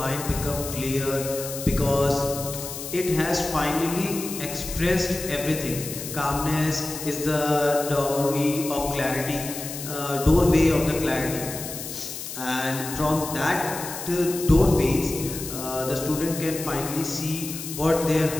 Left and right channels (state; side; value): noise; left; hiss, 8 dB below the sound